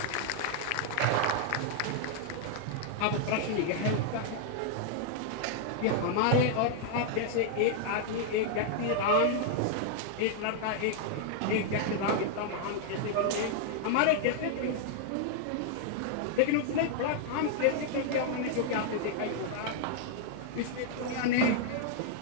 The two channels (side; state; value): both; different; correlation 0.00